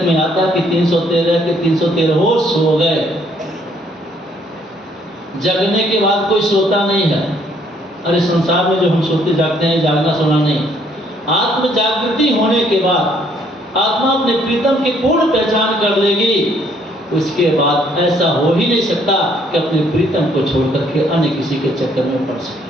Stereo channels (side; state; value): both; normal; correlation 0.66